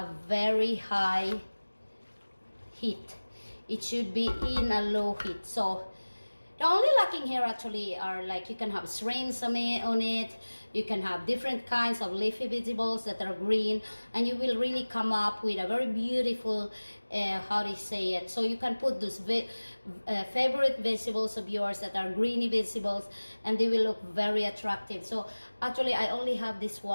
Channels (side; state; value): both; inverted; correlation -1.00